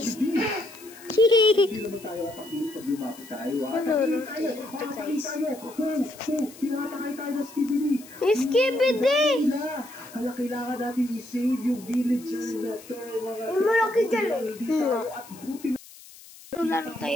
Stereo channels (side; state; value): left; noise; hiss, 20 dB below the sound